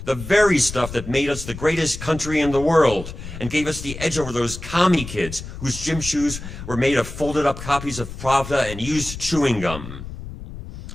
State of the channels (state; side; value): noise; left; rumble, 11 dB below the sound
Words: the very stuff that made us the greatest country in the world and gave us the edge over those commie kids whose gym shoes were made of folded-up copies of Pravda and used chewing gum.